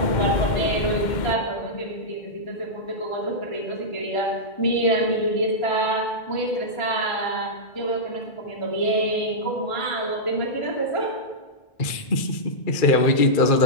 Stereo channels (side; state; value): right; late; 2.3 ms